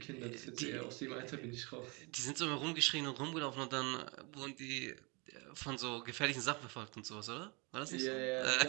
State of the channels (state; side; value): quieter; left; 29.5 dB